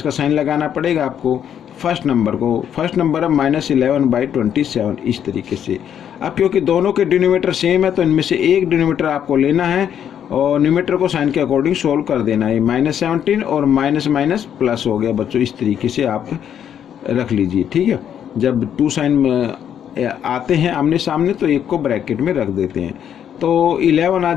का साइन लगाना पड़ेगा आपको फर्स्ट नंबर को। फर्स्ट नंबर है -11/27 इस तरीके से। अब क्योंकि दोनों के डिनोमिनेटर सेम है तो इनमें से एक डिनोमिनेटर आपको लेना है और न्यूमरेटर को साइन के अकॉर्डिंग सोल्व कर देना है। -17 और माइनस माइनस प्लस हो गया बच्चों, इस तरीके से आप रख लीजिए। ठीक है, जब 2 साइन आते हैं आमने सामने तो एक को ब्रैकेट में रख देते हैं, तो 11 आ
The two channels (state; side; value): quieter; right; 9.3 dB